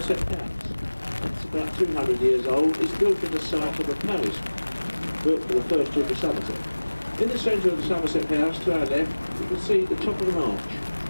House. It's about 200 years old. It's built in the site of a palace built for the first Duke of Somerset. In the centre of the Somerset House, to our left, you can see the top of an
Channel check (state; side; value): inverted; both; correlation -1.00